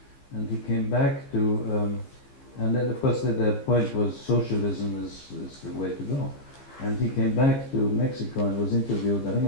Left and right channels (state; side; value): late; right; 15 ms